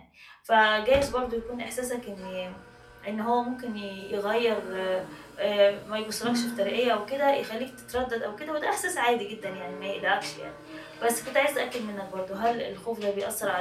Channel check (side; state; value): both; identical; correlation 1.00